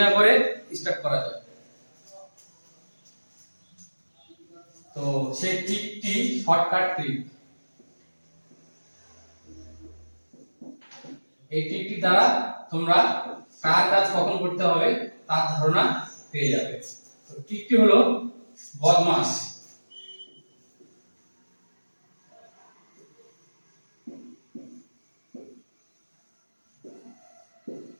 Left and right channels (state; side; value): inverted; both; correlation -1.00